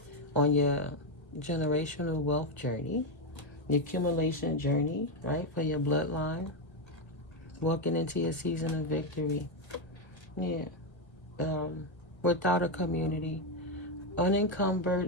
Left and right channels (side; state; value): right; late; 1.7 ms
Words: on your generational wealth journey, the accumulation journey, right, for your bloodline, walking into your season of victory. Yeah. Without a community,